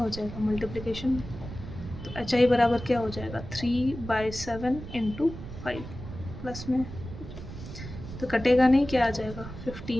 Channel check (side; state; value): right; noise; rumble, 11 dB below the sound